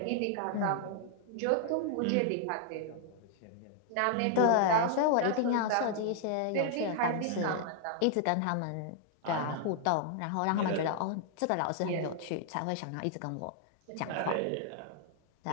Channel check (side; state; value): both; different; correlation 0.00